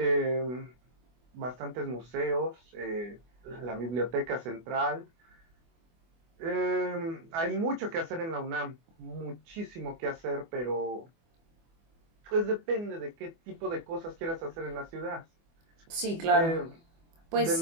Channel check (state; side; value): late; left; 24 ms